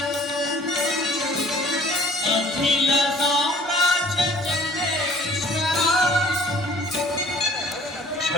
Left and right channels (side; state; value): both; normal; correlation 0.53